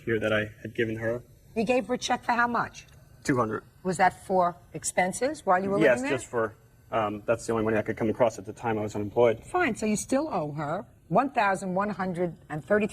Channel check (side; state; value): both; identical; correlation 1.00